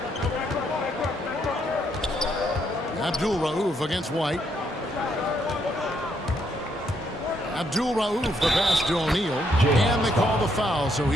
Abdul-Rauf against White. Abdul-Rauf, the pass to O'Neal. And they call the foul, so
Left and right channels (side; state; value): both; normal; correlation 0.74